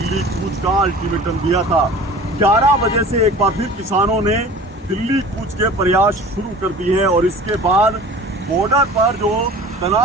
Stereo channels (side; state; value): both; normal; correlation 0.42